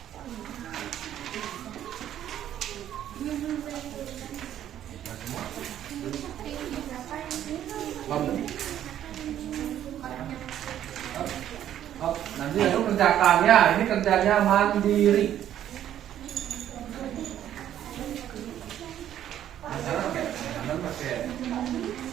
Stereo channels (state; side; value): quieter; left; 11.1 dB